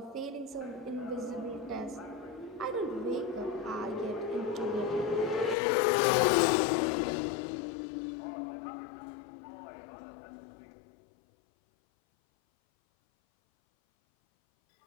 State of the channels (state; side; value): drops out; right; at 5.6 s